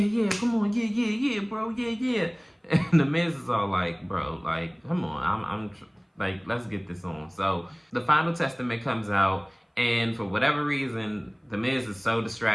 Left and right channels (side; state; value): both; identical; correlation 1.00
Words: come on, yeah, bro, yeah. And The Miz is all like, bro, like, come on, I'm like, let's get this on. So the Final Testament comes out, and for whatever reason, The Miz is so